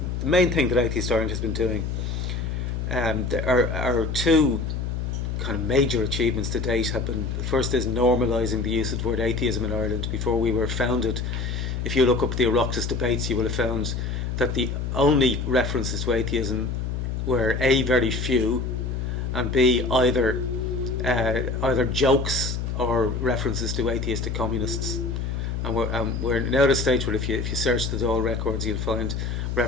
the main thing that Atheist Ireland has been doing, our two kind of major achievements to date have been: the first is normalising the use of the word atheism in Ireland. Before we were founded, if you look up the Oireachtas debates, you will have found that the only references to atheism were A, very few, and B, either jokes or references to atheistic communists. And we're now at a stage where if you search the Dáil records, you'll find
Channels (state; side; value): noise; left; hum, 2 dB below the sound